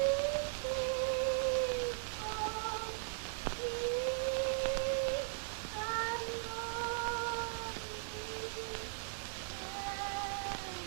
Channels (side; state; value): left; silent; 52 dB below the other